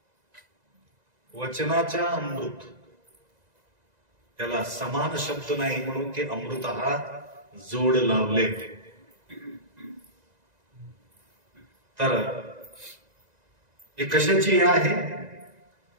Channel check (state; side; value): late; left; 2.0 ms